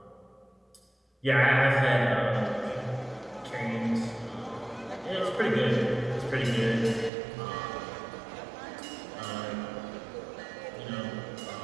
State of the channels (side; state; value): left; drops out; at 7.1 s